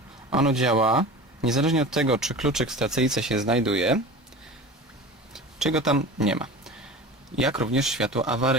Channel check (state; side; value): normal; both; correlation 0.35